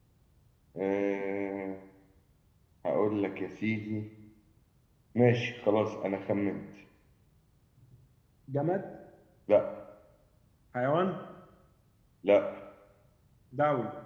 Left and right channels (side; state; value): both; identical; correlation 1.00